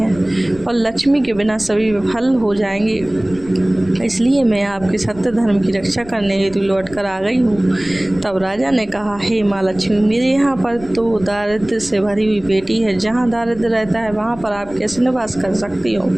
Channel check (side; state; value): left; noise; rumble, 19 dB below the sound